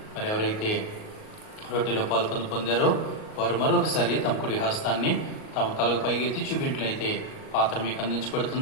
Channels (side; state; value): right; late; 38 ms